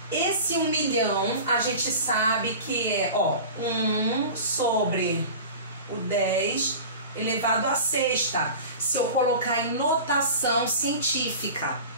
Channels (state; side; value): inverted; both; correlation -0.35